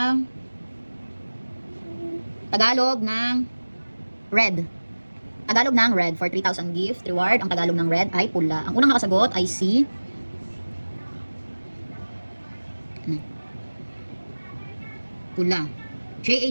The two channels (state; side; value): inverted; both; correlation -1.00